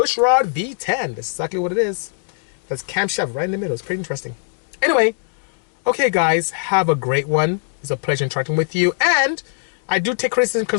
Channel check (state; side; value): silent; right; digital silence